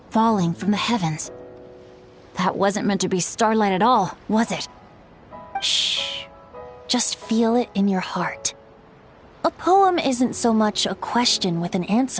falling from the heavens. That wasn't meant to be starlight at all, was it? Shh. Just feel it in your heart. A poem isn't so much a question with an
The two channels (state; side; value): identical; both; correlation 1.00